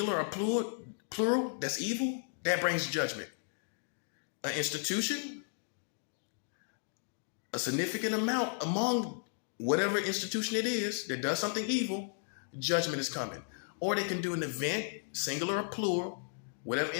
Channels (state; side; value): silent; right; digital silence